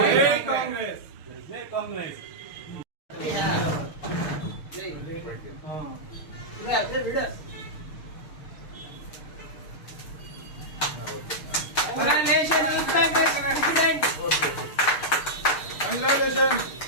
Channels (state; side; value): late; right; 6.6 ms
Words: కాంగ్రెస్. జై కాంగ్రెస్.